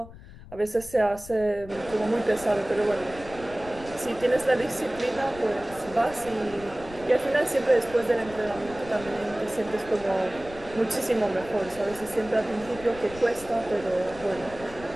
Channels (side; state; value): left; noise; rumble, 17 dB below the sound